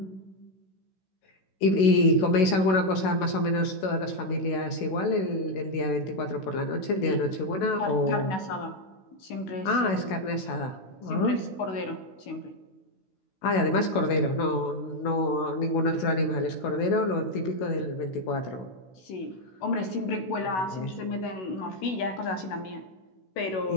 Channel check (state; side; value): late; right; 16 ms